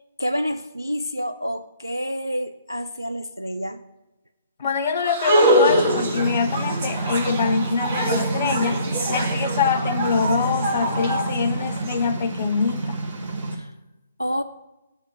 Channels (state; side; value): inverted; both; correlation -0.59